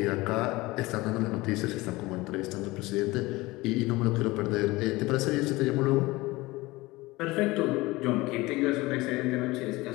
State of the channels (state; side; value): quieter; right; 20.9 dB